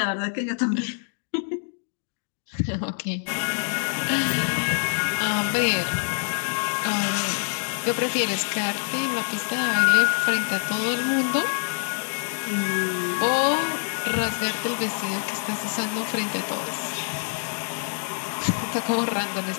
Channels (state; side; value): silent; right; 61 dB below the other